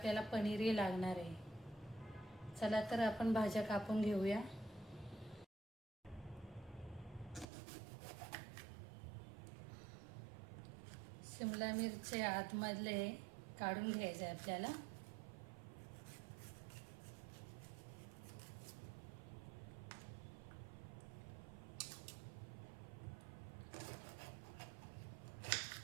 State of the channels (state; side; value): drops out; left; at 7.5 s